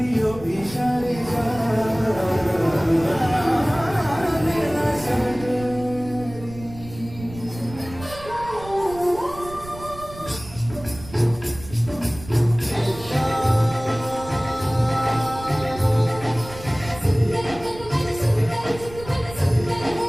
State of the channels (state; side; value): noise; right; rumble, 16 dB below the sound